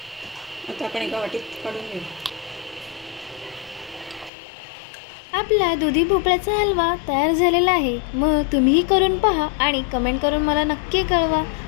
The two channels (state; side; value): drops out; right; at 4.3 s